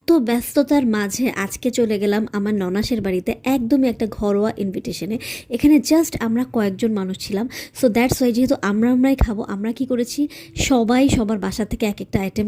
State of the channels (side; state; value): both; identical; correlation 1.00